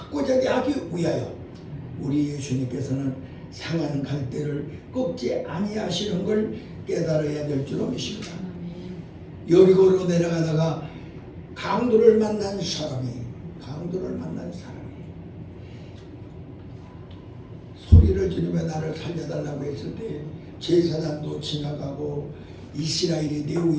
하기 위하여 우리 예수님께서는 상한 갈대를 꺾지 아니하시는 걸 깨달아야 될 줄로 믿습니다. 여리고로 내려가다가 강도를 만난 사람이 소리를 지르며 나를 살려달라고 했을 때 제사장도 지나가고 이스라엘의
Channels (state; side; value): identical; both; correlation 1.00